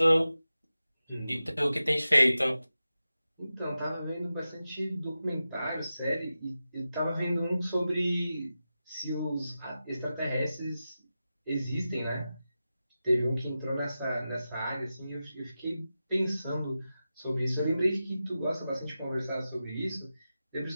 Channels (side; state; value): both; inverted; correlation -0.93